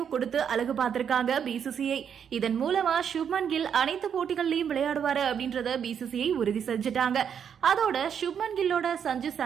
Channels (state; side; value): quieter; left; 7.9 dB